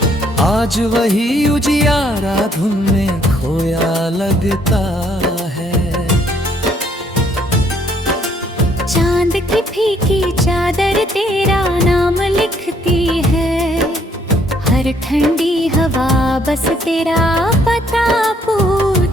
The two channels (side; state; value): both; normal; correlation 0.66